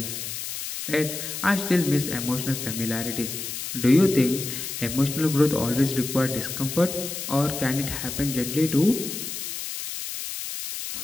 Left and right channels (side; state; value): left; noise; hiss, 6 dB below the sound